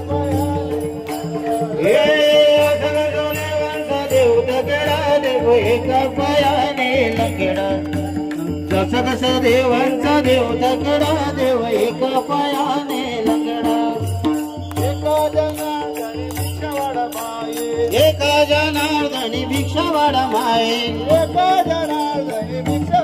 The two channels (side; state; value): both; identical; correlation 1.00